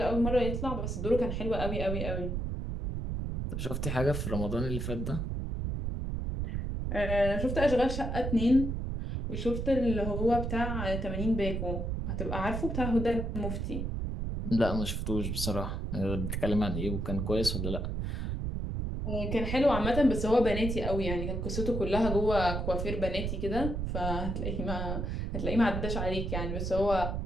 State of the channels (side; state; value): right; noise; rumble, 2 dB below the sound